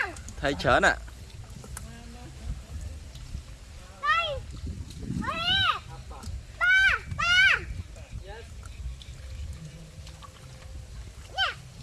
thấy chớn à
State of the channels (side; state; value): both; identical; correlation 1.00